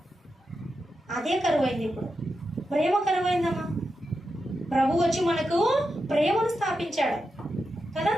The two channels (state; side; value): normal; both; correlation 0.88